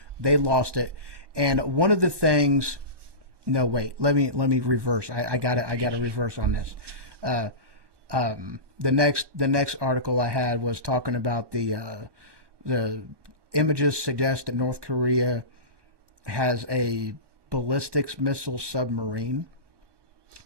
They lost it. And one of the things, no, wait, let me reverse. I got to reverse on this. The next article I had was talking about the images suggest that North Korea has a ballistics missile submarine,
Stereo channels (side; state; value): left; late; 1.2 ms